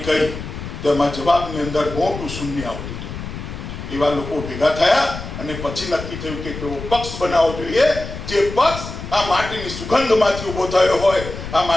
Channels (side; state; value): left; noise; rumble, 9 dB below the sound